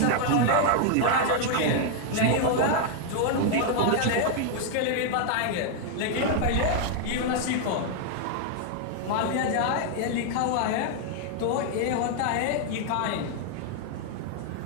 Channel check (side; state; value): both; different; correlation 0.00